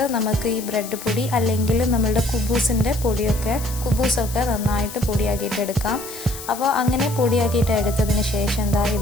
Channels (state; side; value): noise; left; hiss, 12 dB below the sound